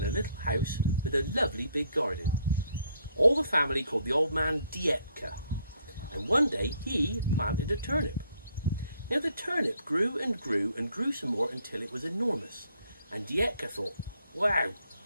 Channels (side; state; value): both; inverted; correlation -0.68